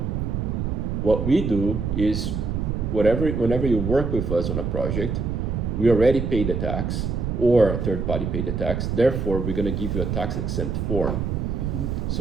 what we do is whenever you work with us on a project, we already pay the tax or a third party pay the tax. Therefore, we're going to give you a tax exempt form.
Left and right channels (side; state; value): right; noise; rumble, 1 dB below the sound